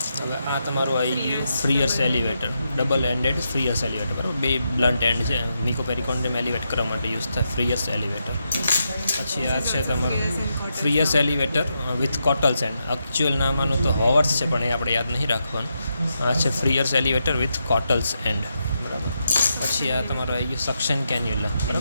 હવે આ તમારું આવી ગયું ફ્રીયર્સ એલિવેટર, ડબલ એન્ડેડ ફ્રીયર્સ એલિવેટર. બરાબર, 2 બ્લન્ટ એન્ડ છે, મિકોપેરિકોન્ડિયમ એલિવેટ કરવા માટે યુઝ થાય ફ્રીયર્સ એલિવેટર. પછી આ છે તમારું ફ્રીયર્સ એલિવેટર વિથ કોટલ્સ એન્ડ. એકચ્યુઅલ નામ આનું તો હોવર્સ છે પણ એ આપણે યાદ નહીં રાખવાનું. આ છે ફ્રીયર્સ એલિવેટર વિથ કોટલ્સ એન્ડ. બરાબર, પછી આ તમારું આવી ગયું સક્શન કેન્યુલા.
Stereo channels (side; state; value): both; inverted; correlation -0.84